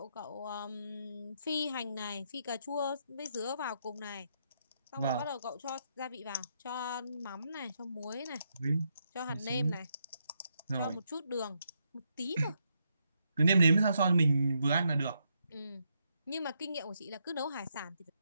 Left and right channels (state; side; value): inverted; both; correlation -0.79